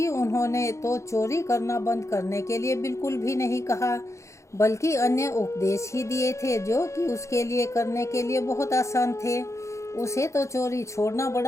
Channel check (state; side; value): late; right; 0.14 ms